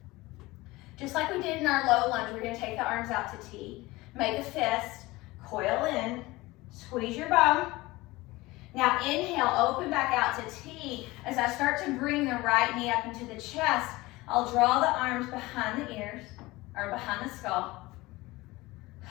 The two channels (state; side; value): quieter; right; 20.5 dB